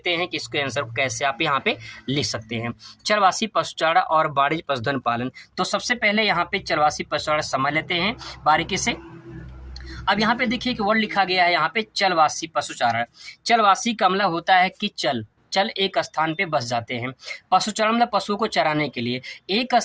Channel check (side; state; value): both; identical; correlation 1.00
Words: हैं कि इसके आंसर को कैसे आप यहाँ पे लिख सकते हैं। चलवासी पशुचारण और वाणिज्यिक पशुधन पालन, तो सबसे पहले यहाँ पे चलवासी पशुचारण समझ लेते हैं बारीकी से। अब यहाँ पे देखिए कि वर्ड लिखा गया है यहाँ पे चलवासी पशुचारण। चलवासी का मतलब होता है कि चल एक स्थान पे बस जाते हैं। पशुचारण मतलब पशुओं को चराने के लिए, एक